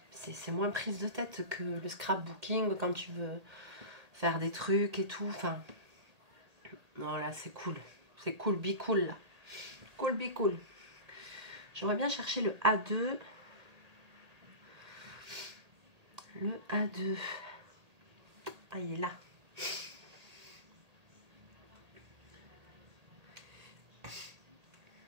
c'est moins prise de tête que le scrapbooking quand tu veux faire des trucs et tout. Enfin, non, là, c'est cool. C'est cool, be cool, là. Cool, be cool. J'aimerais bien chercher le A2. Le A2. Ah, il est là.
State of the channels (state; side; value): late; left; 1.8 ms